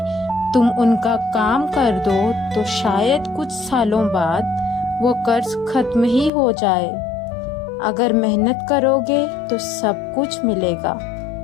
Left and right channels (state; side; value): drops out; right; at 6.3 s